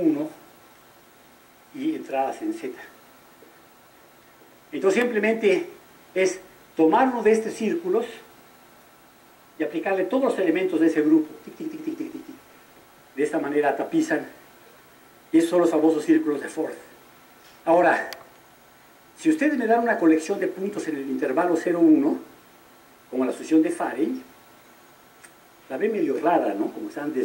y entradas en Z. Entonces simplemente es tomar uno de estos círculos y aplicarle todos los elementos de ese grupo. Tic, tic, tic, tic, tic, tic. De esta manera tapizan, y esos son los famosos círculos de Ford. Ahora, si ustedes me dan una colección de puntos en el intervalo 0,1, como la sucesión de Farey, la ven medio rara, ¿no? Como están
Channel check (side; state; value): both; identical; correlation 1.00